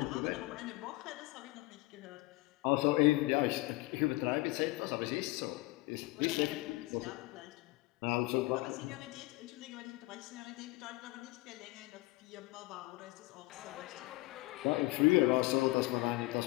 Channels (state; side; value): quieter; right; 21.0 dB